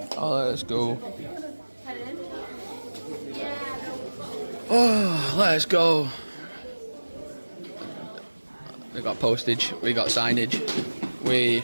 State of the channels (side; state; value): both; inverted; correlation -1.00